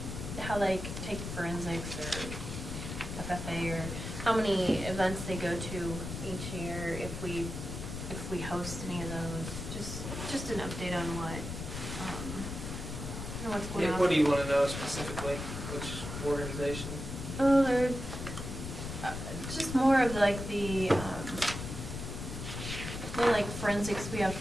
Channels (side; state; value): left; noise; rumble, 7 dB below the sound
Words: how they take forensics or FFA, or how many events they go to each year, if we host any of those. Just an update on what, what's going Yeah, on. what do you wanna know specifically, which organization? Oh, they're just more of like like forensics, we have